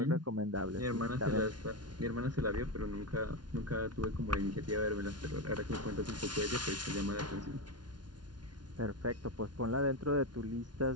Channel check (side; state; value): left; late; 0.70 ms